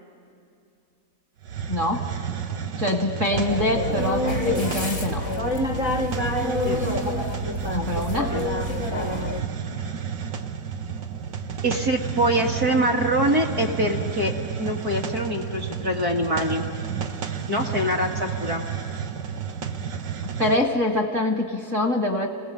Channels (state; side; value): late; left; 4.0 ms